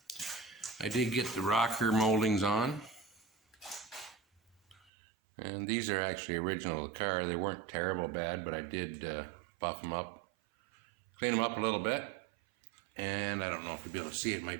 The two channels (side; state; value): left; drops out; at 4.9 s